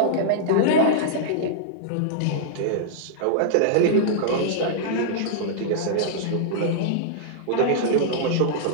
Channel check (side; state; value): both; different; correlation -0.02